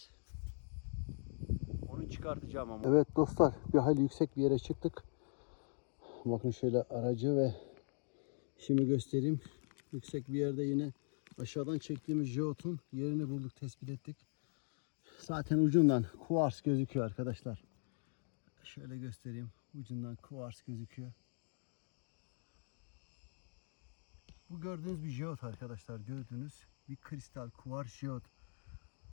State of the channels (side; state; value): right; silent; 51 dB below the other